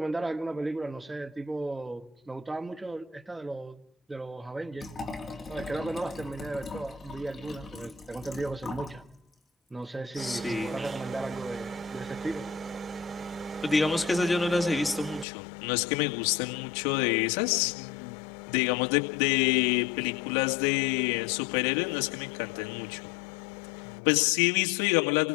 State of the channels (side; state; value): right; drops out; at 15.2 s